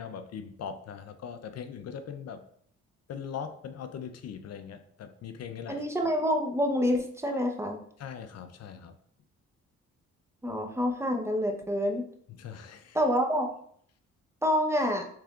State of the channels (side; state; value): both; normal; correlation 0.57